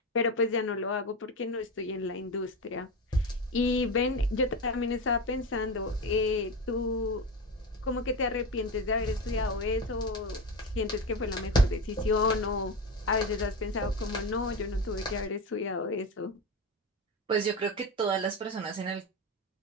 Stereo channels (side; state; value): both; normal; correlation 0.21